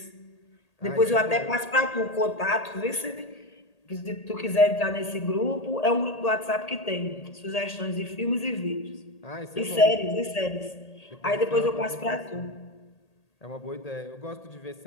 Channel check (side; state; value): right; late; 1.8 ms